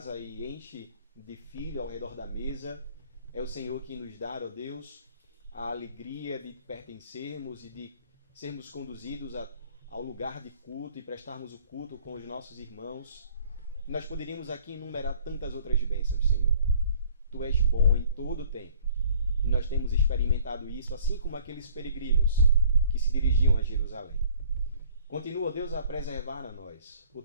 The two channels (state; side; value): inverted; both; correlation -0.55